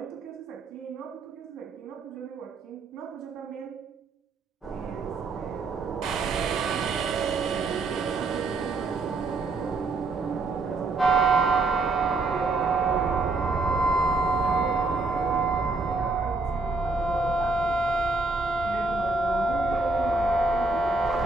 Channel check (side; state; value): left; quieter; 3.5 dB